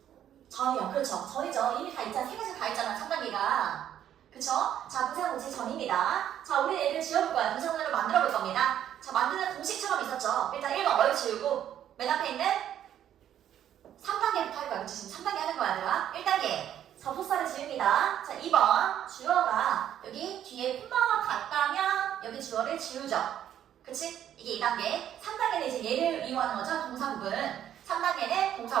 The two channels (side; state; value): left; quieter; 10.6 dB